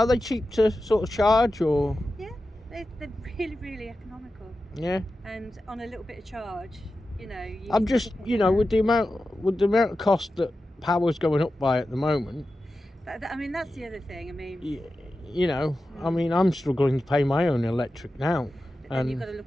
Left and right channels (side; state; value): both; normal; correlation 0.92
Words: they cheap to sort of charge, or? Yeah, they're really economical, Yeah. and on a little bit of charge, you know. I'm just, with the amount of cost that power's going up by at the moment, I mean, that's the other thing. I mean, I mean, I'm struggling to pay my own electric now. but then you've got to